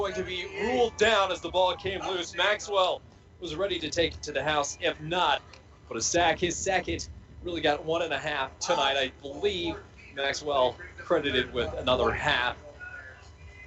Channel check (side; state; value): both; identical; correlation 1.00